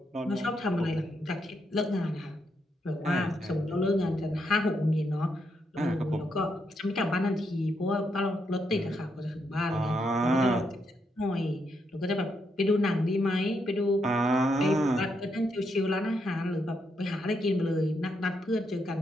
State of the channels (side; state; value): both; normal; correlation 0.79